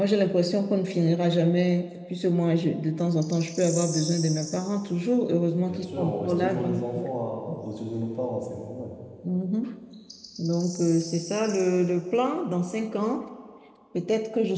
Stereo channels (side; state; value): both; identical; correlation 1.00